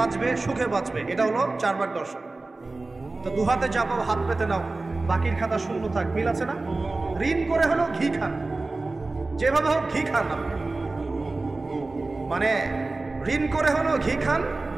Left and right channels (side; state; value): left; quieter; 3.2 dB